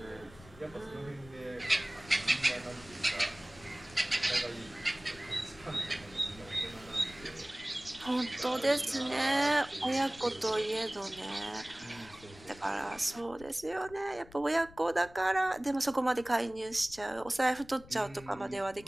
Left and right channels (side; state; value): left; noise; rumble, 20 dB below the sound